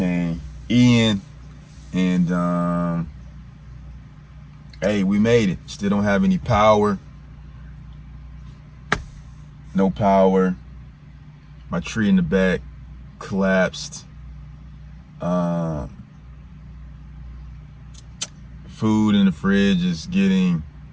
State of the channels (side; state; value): both; identical; correlation 1.00